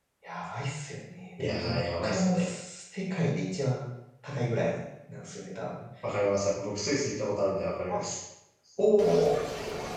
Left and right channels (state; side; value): identical; both; correlation 1.00